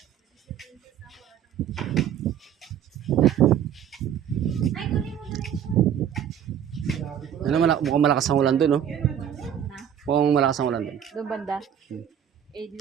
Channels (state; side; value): quieter; left; 9.4 dB